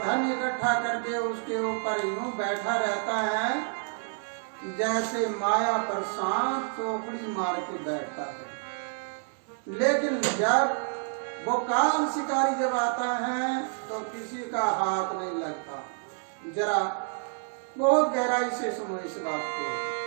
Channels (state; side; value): silent; left; 59 dB below the other